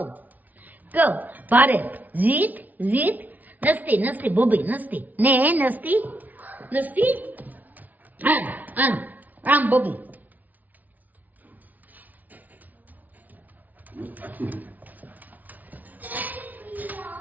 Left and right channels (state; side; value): late; left; 0.078 ms